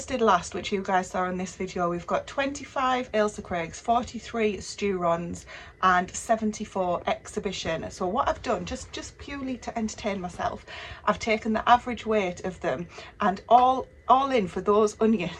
last, which you guys saw in this video. We've got 25 Ailsa Craigs, 43 Sturons and 74 exhibition. So what I've done, just purely to entertain myself, I've taken the average weight of them, and all in for those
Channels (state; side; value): identical; both; correlation 1.00